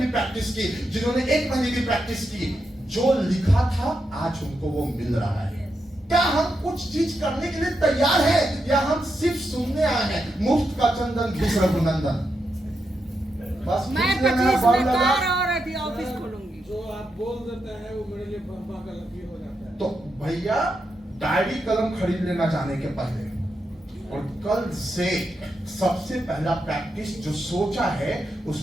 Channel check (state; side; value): normal; both; correlation 0.85